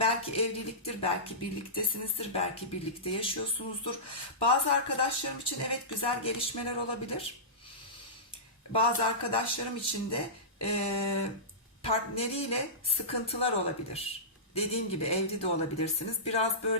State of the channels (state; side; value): normal; both; correlation -0.18